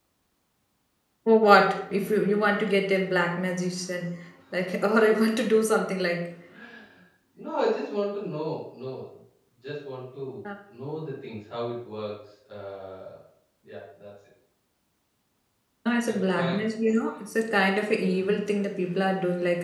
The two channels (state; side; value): identical; both; correlation 1.00